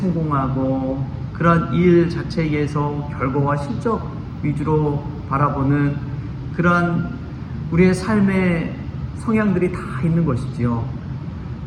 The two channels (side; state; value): both; identical; correlation 1.00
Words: 그러한 일 자체에서 결과와 실적 위주로 바라보는 그러한 우리의 삶의 성향들이 다 있는 것이지요.